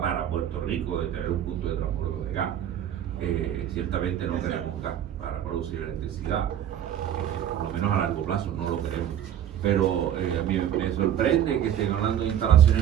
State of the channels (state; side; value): quieter; left; 10.3 dB